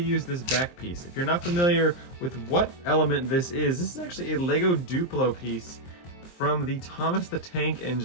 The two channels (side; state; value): right; late; 23 ms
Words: this back piece. If you're not familiar with what element this is actually a LEGO Duplo piece from the Thomas the Tank